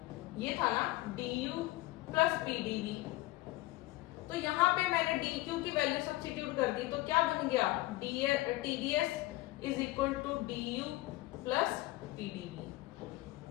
ये था ना, DU + PdV। तो यहाँ पे मैंने DQ की वैल्यू सब्स्टिट्यूट कर दी, तो क्या बन गया, TDS = DU + PdV,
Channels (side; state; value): right; quieter; 19.0 dB